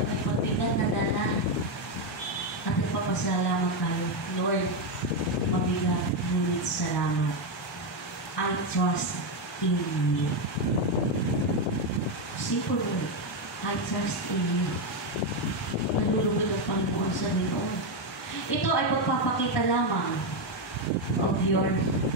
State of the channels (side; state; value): both; normal; correlation 0.06